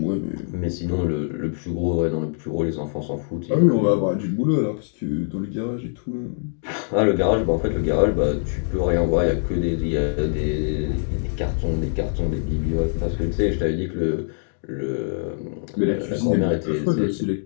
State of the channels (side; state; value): right; silent; digital silence